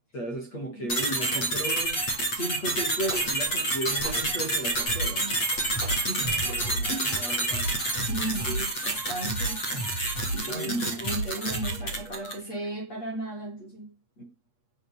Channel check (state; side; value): late; right; 8.3 ms